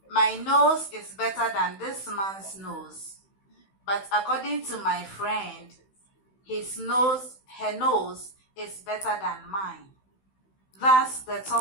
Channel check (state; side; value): late; right; 16 ms